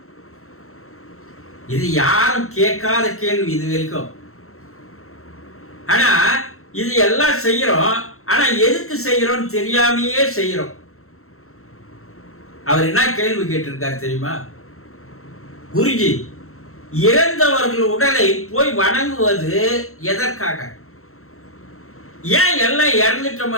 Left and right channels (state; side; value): late; right; 0.63 ms